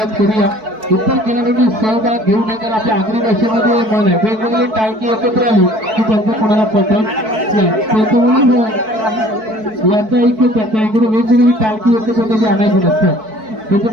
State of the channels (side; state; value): left; late; 4.6 ms